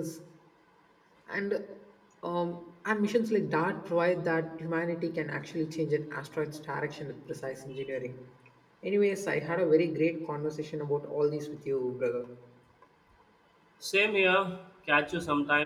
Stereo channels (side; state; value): both; identical; correlation 1.00